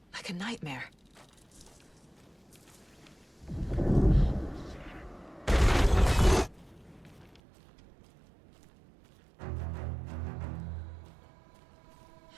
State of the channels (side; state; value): left; drops out; at 7.4 s